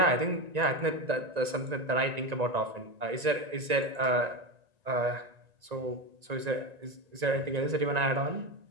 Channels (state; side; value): late; left; 1.9 ms